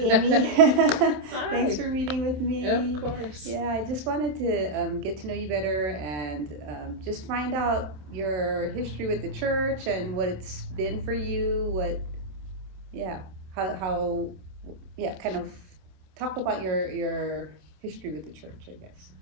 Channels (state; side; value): late; left; 27 ms